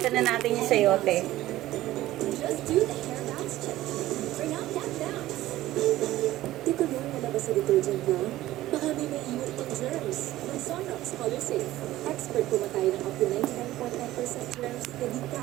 na natin yung sayote. Di ko rin nalabas sa detergent na. Baka may iiwan pang germs. Ng Sunrox Color Safe. Expert kumatay ng up to 99.9% germs na di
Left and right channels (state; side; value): quieter; left; 15.6 dB